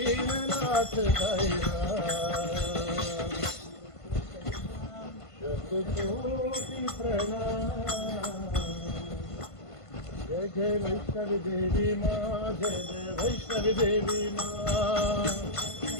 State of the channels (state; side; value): late; right; 1.5 ms